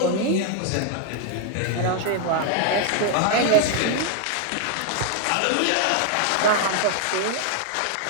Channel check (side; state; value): both; different; correlation 0.00